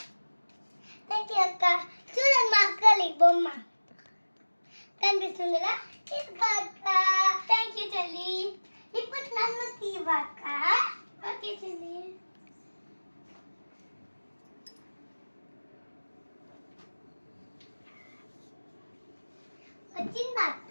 థ్యాంక్ యూ అక్క. చూడండి మా అక్కలి బొమ్మ కనిపిస్తుంది కదా. అక్క థ్యాంక్ యూ చెల్లి. ఇప్పుడు నన్ను తీవక్క. ఓకే చెల్లి. వచ్చిందా అక్క?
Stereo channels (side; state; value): both; inverted; correlation -1.00